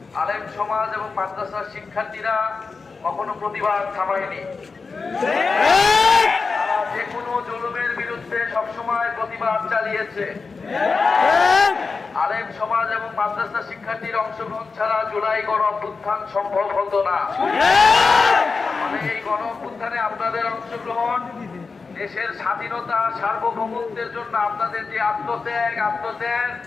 আলেম সমাজ এবং মাদ্রাসার শিক্ষার্থীরা কখনো প্রতিবাদ থামায়নি। তারা যে কোনো জুলুমের বিরুদ্ধে সবসময় প্রতিবাদ চালিয়েছে। আলেম সমাজ এবং মাদ্রাসা শিক্ষার্থীর অংশগ্রহণ ছাড়া জুলাই গণ অভ্যুত্থান সম্ভব হতো না। এই গণ অভ্যুত্থানে আপনাদের অংশগ্রহণ, দেশের স্বাধীনতা সার্বভৌমত্বের জন্য আপনাদের যে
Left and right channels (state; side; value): quieter; right; 4.5 dB